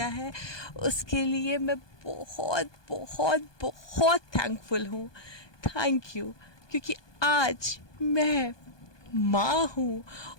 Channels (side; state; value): right; late; 1.2 ms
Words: है उसके लिए मैं बहुत बहुत बहुत थैंकफुल हूँ। थैंक यू क्योंकि आज मैं माँ हूँ